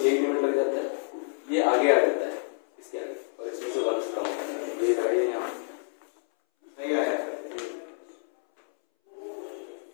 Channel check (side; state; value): right; silent; 59 dB below the other